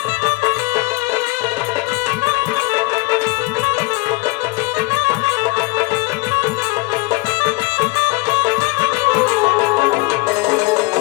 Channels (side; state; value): right; quieter; 24.5 dB